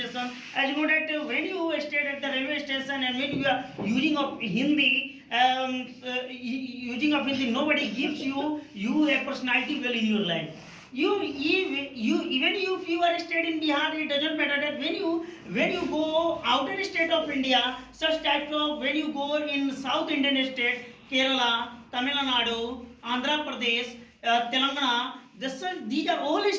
As you know that when you stayed at the railway station and when you are using of Hindi, nobody gives you a personality well in your life. You even if you are stayed in Bihar, it doesn't matter that when you go outer state of India, such types of when you go in South Indian state, Kerala, Tamil Nadu, Andhra Pradesh, Telangana, these are all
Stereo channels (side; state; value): both; identical; correlation 1.00